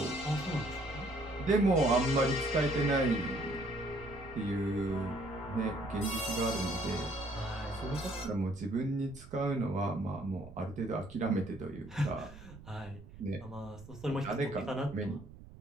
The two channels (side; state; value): right; noise; rumble, 17 dB below the sound